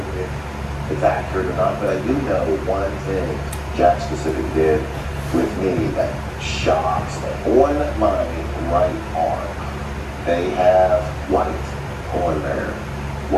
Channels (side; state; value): both; identical; correlation 1.00